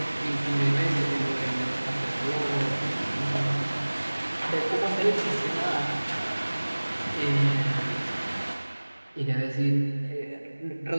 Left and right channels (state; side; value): inverted; both; correlation -1.00